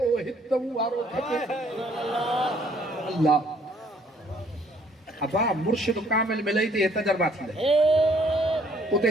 हितऊ वारो खपे। अल्लाह अबा मुर्शिद कामिल मिलई थी तजर्बा थी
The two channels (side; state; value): both; normal; correlation 0.63